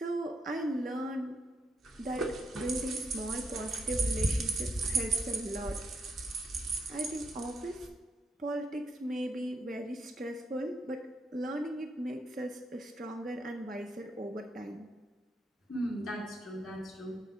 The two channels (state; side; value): normal; both; correlation 0.79